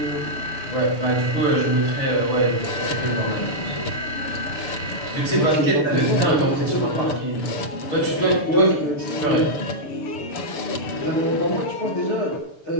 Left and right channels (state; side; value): late; right; 6.8 ms